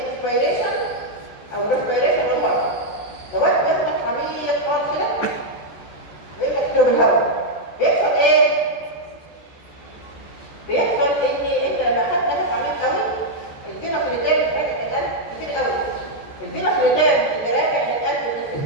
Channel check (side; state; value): right; late; 14 ms